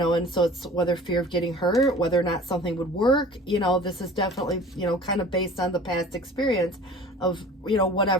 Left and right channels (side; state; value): both; normal; correlation 0.43